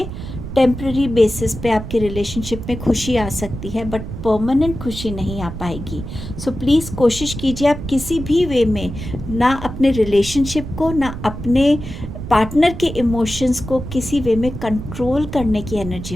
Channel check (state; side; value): noise; right; rumble, 9 dB below the sound